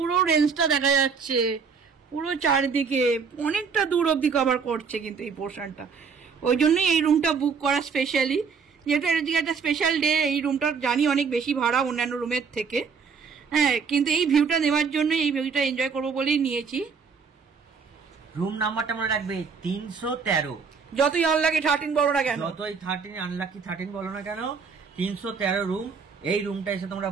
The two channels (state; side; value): quieter; left; 5.7 dB